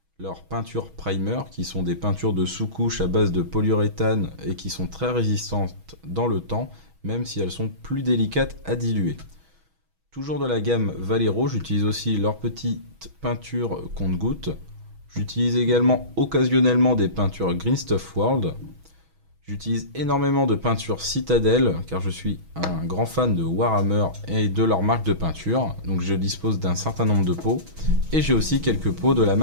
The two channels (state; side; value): late; left; 6.2 ms